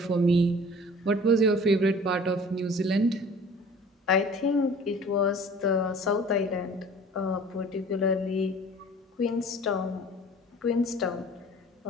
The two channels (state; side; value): normal; both; correlation 0.47